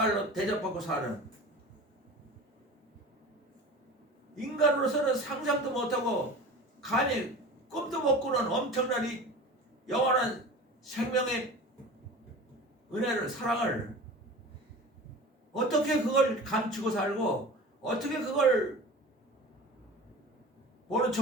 대접받고 사는 인간으로서는 상상도 못하고 감히 꿈도 못 꾸는 엄청난 이 영원한 생명의 은혜를 사랑을 어떻게 그걸 감추고 살고 어떻게 그걸 모른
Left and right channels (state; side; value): normal; both; correlation 0.36